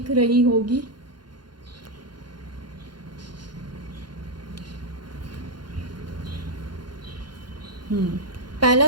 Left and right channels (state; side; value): late; left; 0.71 ms